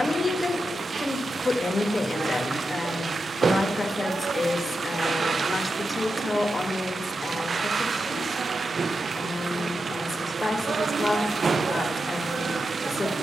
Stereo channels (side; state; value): both; normal; correlation 0.88